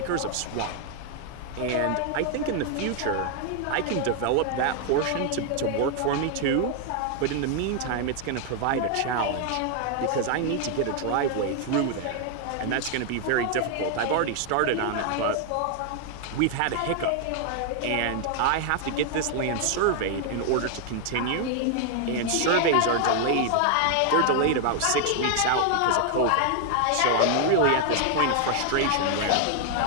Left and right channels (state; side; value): different; both; correlation 0.00